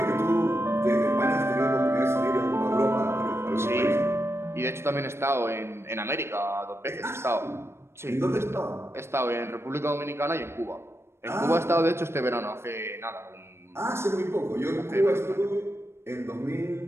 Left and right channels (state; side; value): late; left; 0.12 ms